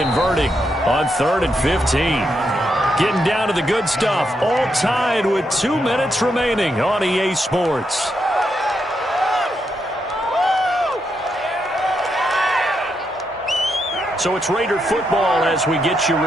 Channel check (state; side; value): normal; both; correlation 0.81